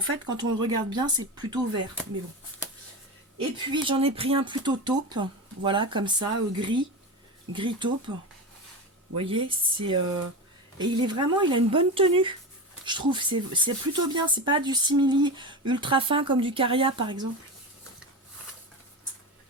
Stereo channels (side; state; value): both; normal; correlation 0.23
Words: fait quand on le regarde bien c'est plutôt vert, mais bon. Et puis j'en ai pris un plutôt taupe, voilà, comme ça, gris taupe. Vous voyez, et il a une bonne tenue, je trouve. C'est plutôt bien, c'est pas du simili ultra fin comme du Caria par exemple.